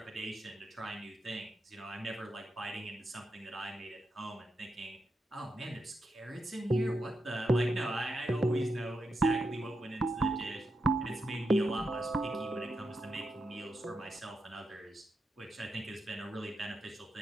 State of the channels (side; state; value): both; normal; correlation 0.85